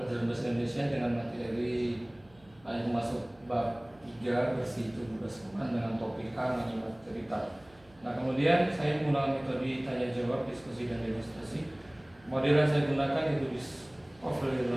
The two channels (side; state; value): right; noise; hum, 28 dB below the sound